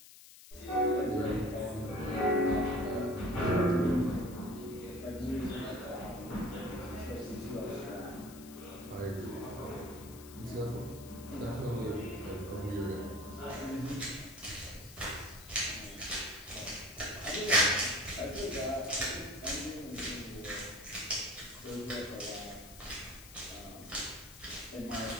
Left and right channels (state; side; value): noise; left; hiss, 17 dB below the sound